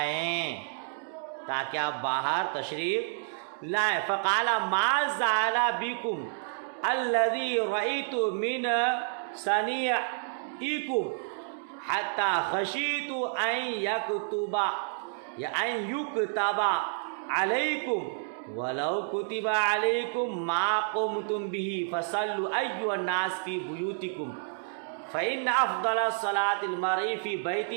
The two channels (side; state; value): left; silent; digital silence